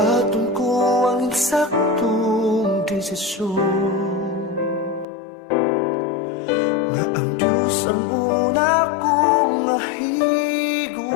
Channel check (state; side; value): drops out; right; at 5.1 s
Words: ko ang eksaktong desisyon, nga ang Diyos ang una kong mahigugmaon.